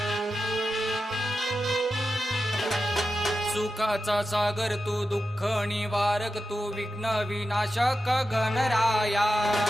सुखाचा सागर तू दुःख निवारक तू विघ्न विनाशक गणराया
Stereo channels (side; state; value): both; normal; correlation 0.90